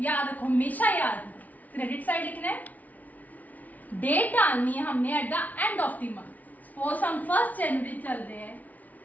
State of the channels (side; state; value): right; late; 0.076 ms